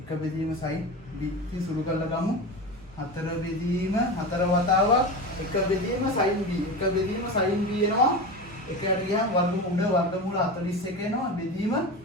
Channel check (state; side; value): normal; both; correlation 0.25